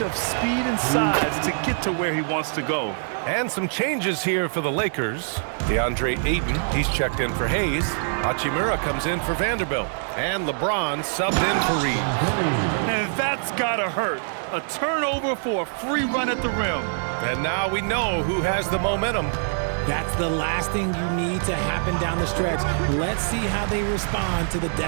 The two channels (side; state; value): left; silent; 62 dB below the other